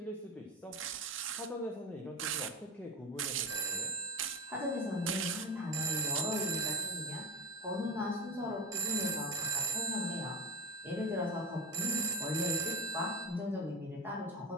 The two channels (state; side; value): normal; both; correlation 0.23